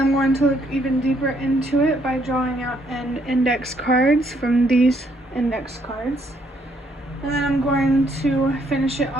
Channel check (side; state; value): both; normal; correlation 0.70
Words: I'm going to look even deeper into it by drawing out an index cards from these index cards. And then I'm going to finish it